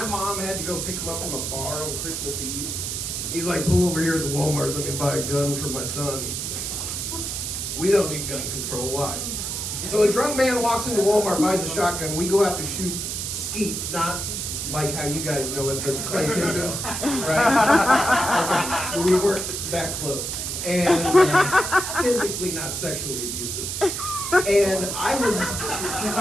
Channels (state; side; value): noise; right; hiss, 3 dB below the sound